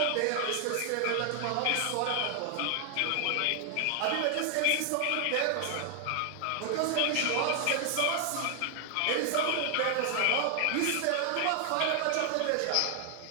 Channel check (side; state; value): both; different; correlation 0.00